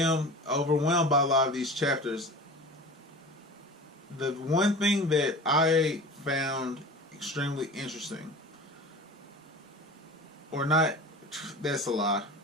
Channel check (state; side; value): normal; both; correlation 0.36